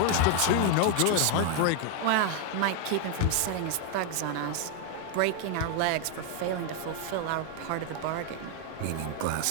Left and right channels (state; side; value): different; both; correlation 0.01